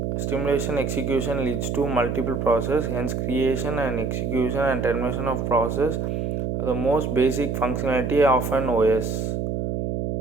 Stimulation execution leads to multiple processes, hence creation and execution and termination of process are the most basic functionality of an OS.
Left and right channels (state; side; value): noise; right; hum, 2 dB below the sound